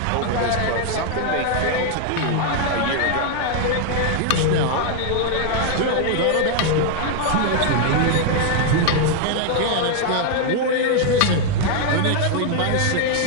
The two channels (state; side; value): different; both; correlation 0.00